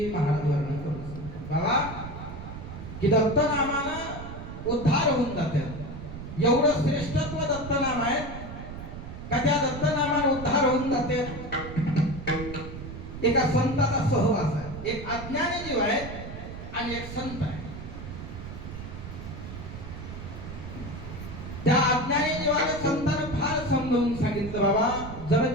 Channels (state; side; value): noise; right; rumble, 10 dB below the sound